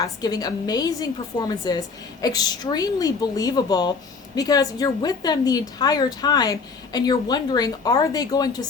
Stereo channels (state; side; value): quieter; right; 4.8 dB